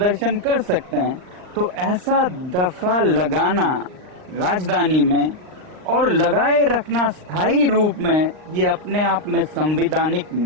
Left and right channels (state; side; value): late; left; 39 ms